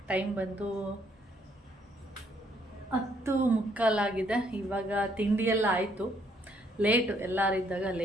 ಟೈಮ್ ಬಂದು 10:45 ಇವಾಗ ತಿಂಡಿಯೆಲ್ಲ ಆಯಿತು. ಲೇಟು, ಎಲ್ಲರಿದ್ದಾಗ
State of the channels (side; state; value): both; normal; correlation 0.68